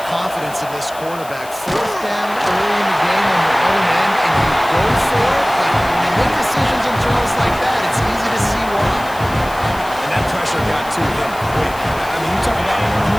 confidence in this quarterback. Fourth down early in the game on your own end, and you go for it. But when you make decisions and throws like that, it's easy to see why. And that pressure got to him quick. I mean, you talk about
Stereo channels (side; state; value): left; noise; hiss, 18 dB below the sound